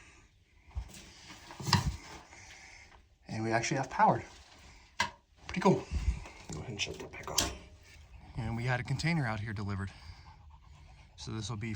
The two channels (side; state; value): both; identical; correlation 1.00